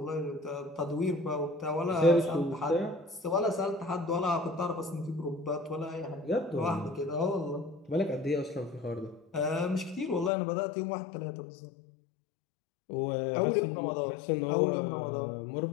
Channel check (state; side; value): drops out; right; at 10.3 s